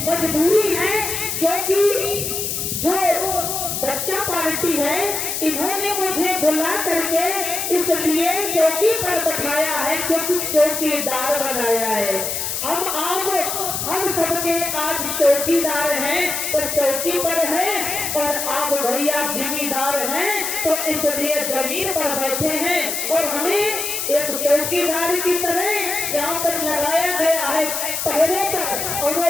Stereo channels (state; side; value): noise; left; hiss, 2 dB below the sound